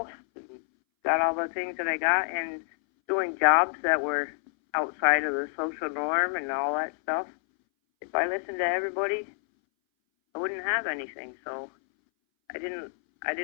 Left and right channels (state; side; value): silent; right; 59 dB below the other